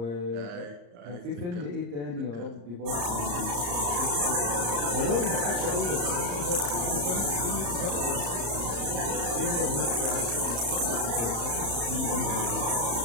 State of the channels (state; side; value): late; left; 34 ms